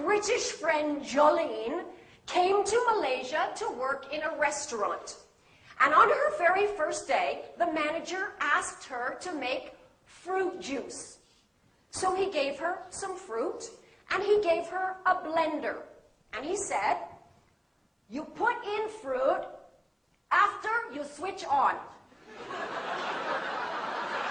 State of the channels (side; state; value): both; identical; correlation 1.00